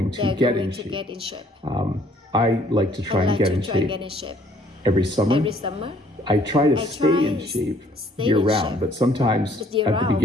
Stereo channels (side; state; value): both; normal; correlation 0.61